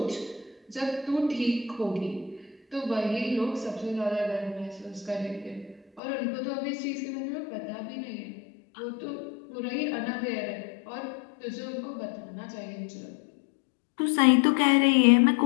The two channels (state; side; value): drops out; right; at 6.0 s